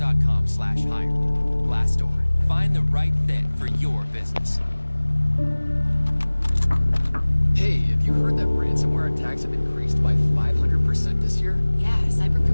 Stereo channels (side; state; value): both; inverted; correlation -1.00